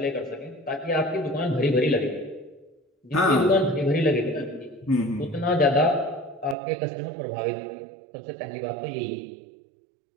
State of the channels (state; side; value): drops out; left; at 6.6 s